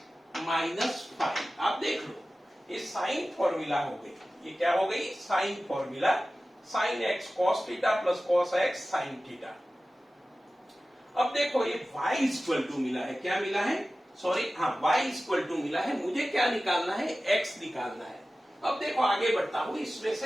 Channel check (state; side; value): normal; both; correlation 0.96